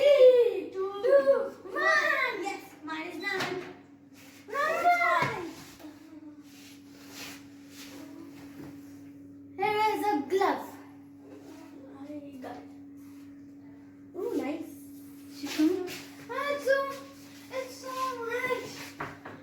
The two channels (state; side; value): identical; both; correlation 1.00